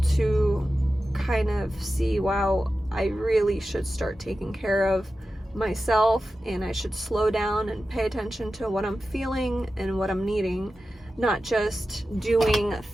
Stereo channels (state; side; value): normal; both; correlation 0.93